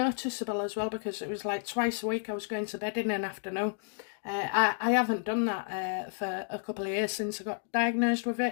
as well because it was like twice a week I was going to bed in an afternoon. I haven't done that for a couple of years since I got diagnosed with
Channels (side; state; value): right; silent; digital silence